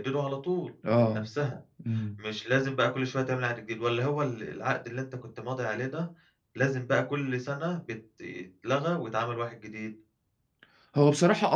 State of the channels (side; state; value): both; identical; correlation 1.00